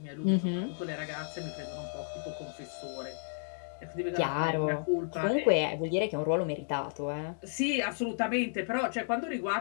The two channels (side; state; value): right; silent; digital silence